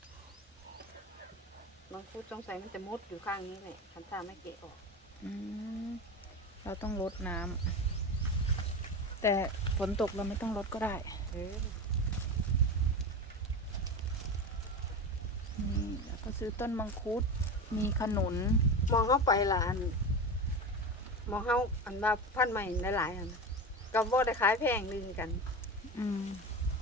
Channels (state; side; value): normal; both; correlation 0.24